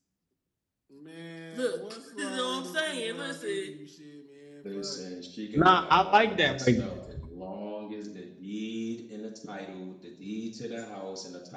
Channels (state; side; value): identical; both; correlation 1.00